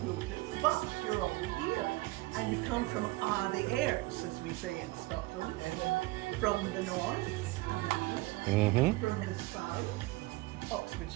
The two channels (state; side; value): quieter; left; 20.9 dB